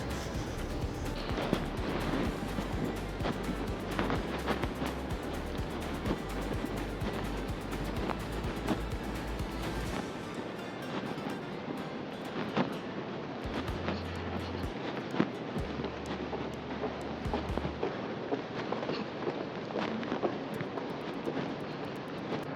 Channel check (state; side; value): identical; both; correlation 1.00